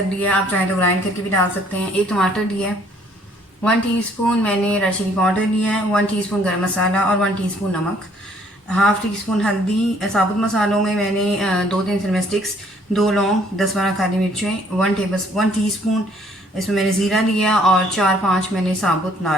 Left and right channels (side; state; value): both; normal; correlation 0.62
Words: लिया है, आप चाहें तो ग्राइंड करके भी डाल सकते हैं। एक टमाटर लिया है, 1 टीस्पून मैंने रेड चिली पाउडर लिया है, 1 टीस्पून गरम मसाला और 1 टीस्पून नमक, हाफ़ टीस्पून हल्दी। साबुत मसालों में मैंने 2-3 सिनेमा स्टिक्स, 2 लौंग, 10-12 काली मिर्चें, 1 टीस्पून इसमें मैंने ज़ीरा लिया और 4-5 मैंने साबुत